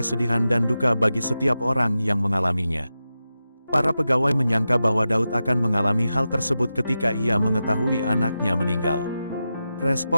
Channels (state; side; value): inverted; both; correlation -0.91